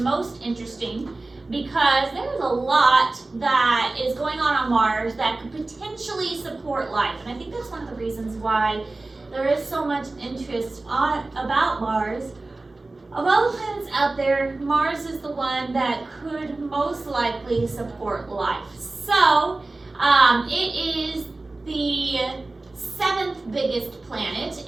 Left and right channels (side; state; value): left; quieter; 3.2 dB